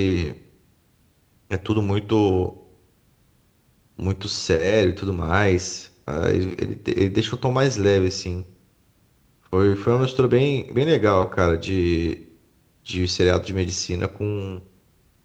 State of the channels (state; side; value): identical; both; correlation 1.00